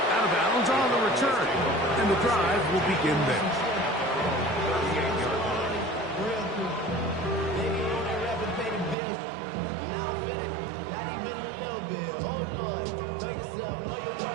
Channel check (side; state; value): left; drops out; at 9.0 s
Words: out of bounds on the return. And the drive will begin there.